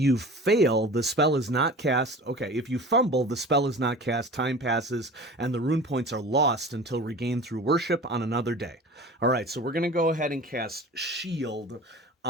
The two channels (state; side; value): normal; both; correlation 0.39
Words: fail, the spell is not cast. Okay, if you fumble, the spell is not cast, time passes, and the rune points are lost until regained through worship on another day. All right, so we're going to go ahead and cast Shield